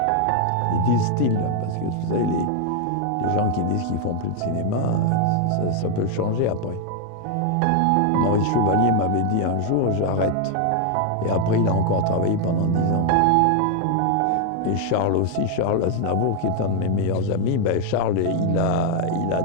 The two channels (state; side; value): different; both; correlation 0.00